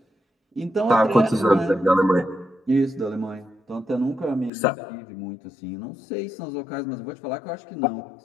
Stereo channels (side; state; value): right; drops out; at 4.5 s